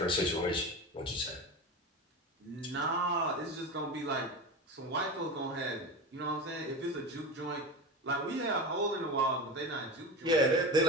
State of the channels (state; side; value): normal; both; correlation 0.25